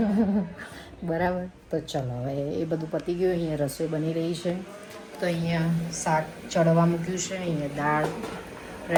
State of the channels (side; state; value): both; identical; correlation 1.00